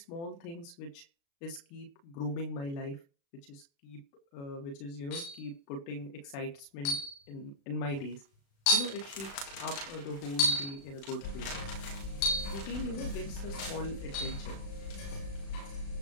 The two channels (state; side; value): late; right; 36 ms